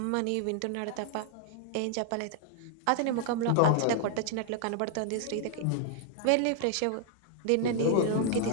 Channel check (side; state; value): both; different; correlation 0.00